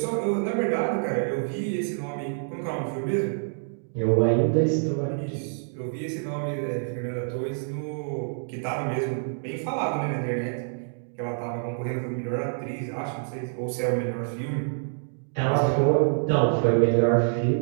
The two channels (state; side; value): silent; left; digital silence